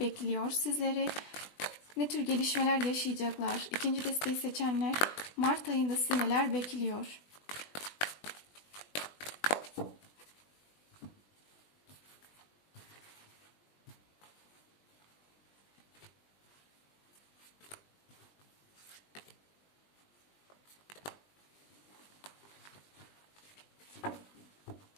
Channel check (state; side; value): late; right; 20 ms